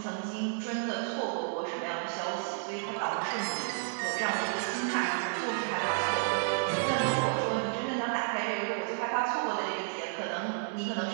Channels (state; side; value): silent; left; 57 dB below the other